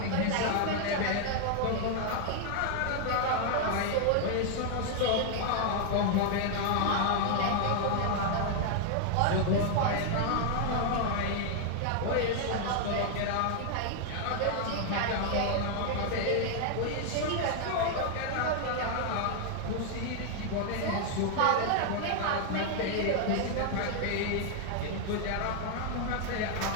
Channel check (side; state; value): both; different; correlation 0.00